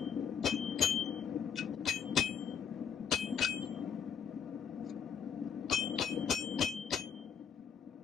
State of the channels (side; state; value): right; quieter; 7.4 dB